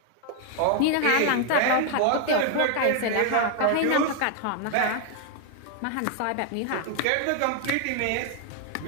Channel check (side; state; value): both; different; correlation 0.00